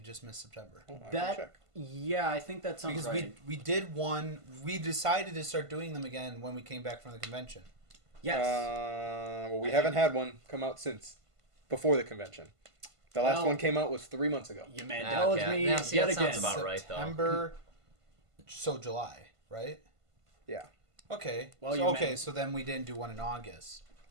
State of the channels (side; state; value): left; late; 1.5 ms